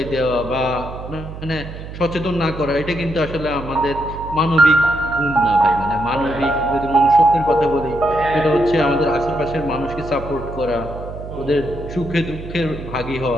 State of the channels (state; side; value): noise; right; hum, 11 dB below the sound